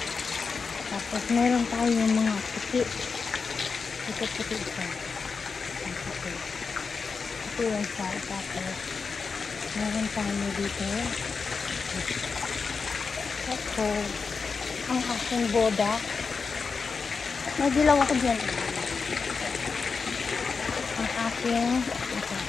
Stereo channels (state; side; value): quieter; right; 5.0 dB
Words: Tapos, meron tayong mga puti. Puti-puti ito. Ang puti. Ito yung sa. Tapos, meron tayo dito. Ito. Ang aking boda. May dilaw ako dyan. Ang aking ito.